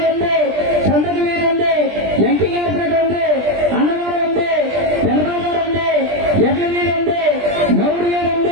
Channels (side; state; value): left; late; 20 ms